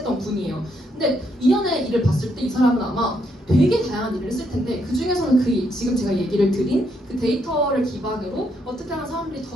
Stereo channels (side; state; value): both; normal; correlation 0.75